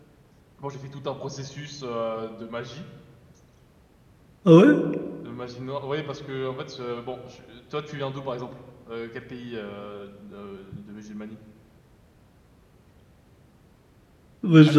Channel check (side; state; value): both; identical; correlation 1.00